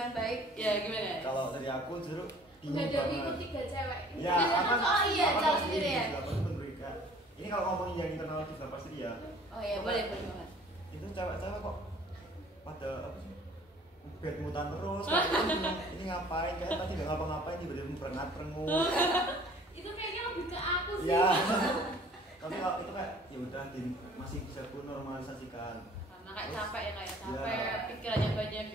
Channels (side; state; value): both; normal; correlation 0.52